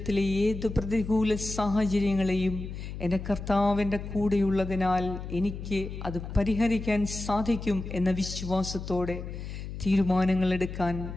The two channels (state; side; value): noise; left; hum, 8 dB below the sound